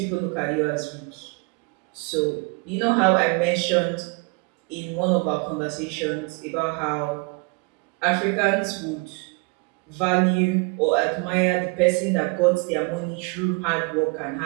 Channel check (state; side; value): quieter; left; 31.3 dB